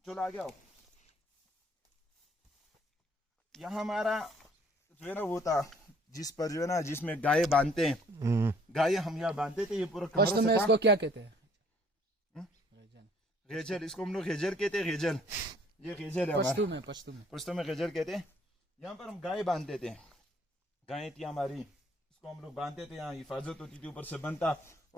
चलो आगे आओ। यहाँ हमारा जो है ना वो था जिस पर जो है ना जिसमें गाय बांधते हैं, गाय हम यहाँ बांधते थे। ये पूरा फर्स्ट कमरा में सा था। इसको क्या कहते हैं? गेजर, इसको हम लोग गेजर कहते हैं, गेजर। ये गेजर है हमारा, पश्तू में, पश्तू में। पुश्तों में गेजर कहते हैं। यहाँ पर हम गाय बांधते थे, गाय थी हमारी, इसको हम लोग बांधते थे। यहाँ हिफाजत होती थी, ऊपर से बनता।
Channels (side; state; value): both; normal; correlation 0.60